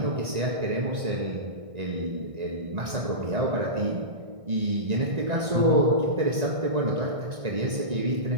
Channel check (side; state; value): left; late; 1.6 ms